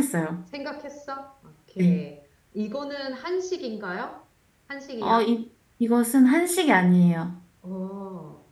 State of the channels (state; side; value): identical; both; correlation 1.00